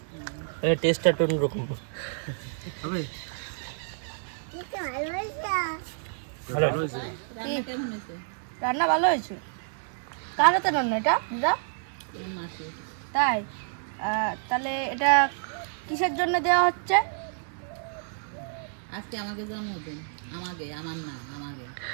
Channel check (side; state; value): left; silent; 59 dB below the other